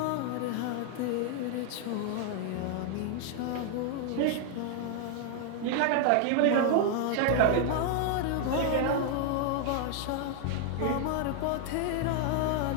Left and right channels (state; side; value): different; both; correlation 0.00